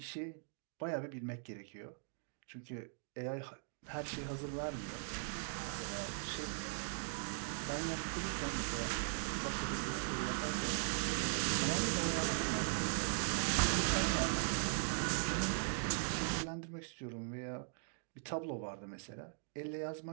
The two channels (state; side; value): silent; left; digital silence